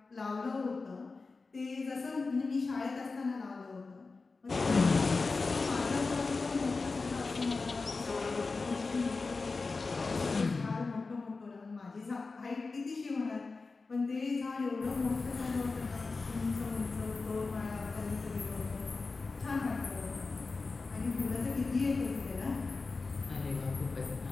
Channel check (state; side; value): quieter; right; 4.0 dB